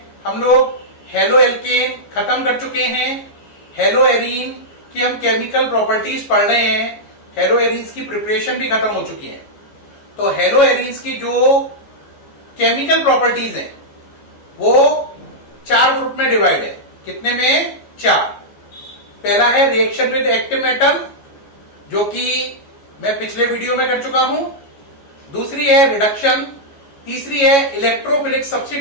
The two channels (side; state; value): right; late; 14 ms